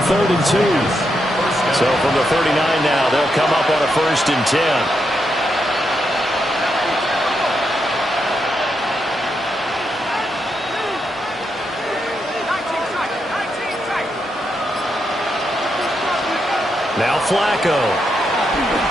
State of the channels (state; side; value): normal; both; correlation 0.82